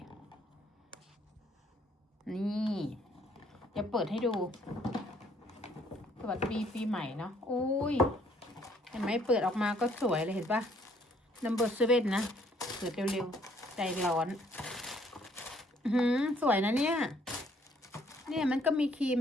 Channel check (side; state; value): both; normal; correlation 0.64